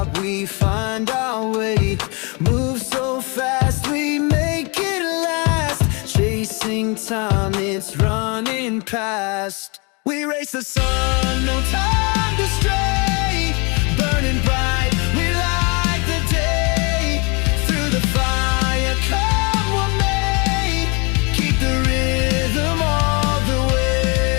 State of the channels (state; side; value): quieter; right; 31.1 dB